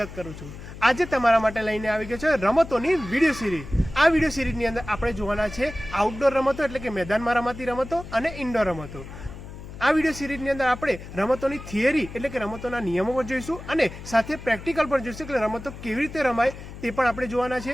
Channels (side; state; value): left; noise; hum, 13 dB below the sound